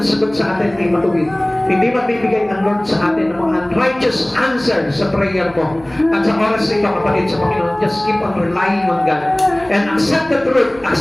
sagot sa atin ay matuwid. Hindi magbibigay ng Lord sa atin ng mga unrighteous answer sa prayer mo. At sa oras nito, kapatid sa Panginoon, just keep on relying on God. And accept the truth.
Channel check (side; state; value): right; noise; hum, 24 dB below the sound